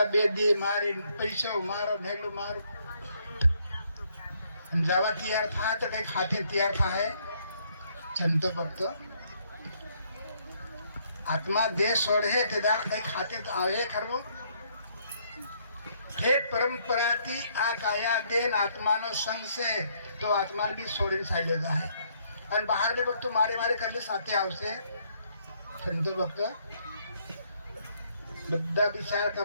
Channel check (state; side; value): inverted; both; correlation -0.69